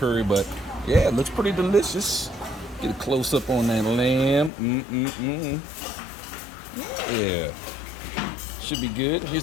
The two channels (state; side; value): drops out; right; at 4.5 s